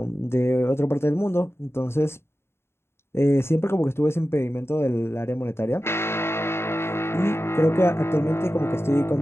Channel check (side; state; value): right; late; 0.12 ms